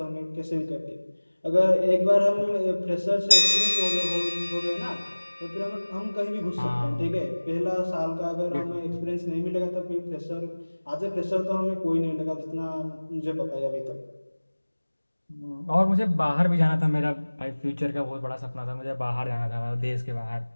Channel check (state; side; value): inverted; both; correlation -1.00